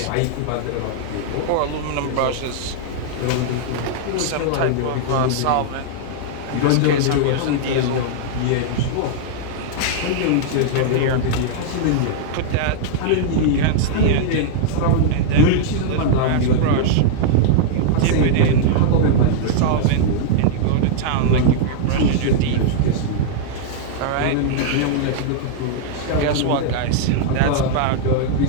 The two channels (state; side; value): different; both; correlation -0.01